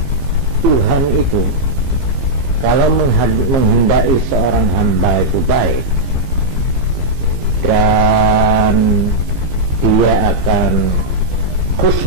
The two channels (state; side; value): late; left; 15 ms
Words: Tuhan itu kalau menghendaki seorang hamba itu baik dan dia akan